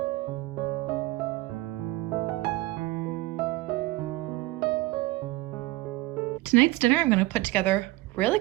Tonight's dinner I'm going to put together really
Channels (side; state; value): left; quieter; 19.7 dB